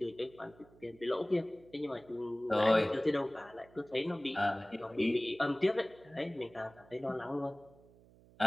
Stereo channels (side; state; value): right; noise; hum, 25 dB below the sound